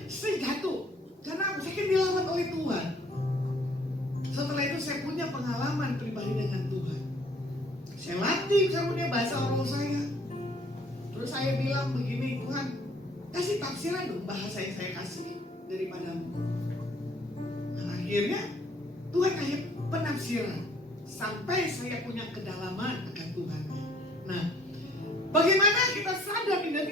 saya jatuh, karena saya kan dilawat oleh Tuhan. Setelah itu saya punya pengalaman pribadi dengan Tuhan. Saya latih karunia bahasa roh saya. Terus saya bilang begini, Tuhan kasih tafsiran dong bahasa yang saya kasih daripadamu. Nah, akhirnya Tuhan kasih penafsiran sampai saya punya kedalaman akan Tuhan. Nah, bagaimana kita sadar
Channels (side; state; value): both; normal; correlation 0.59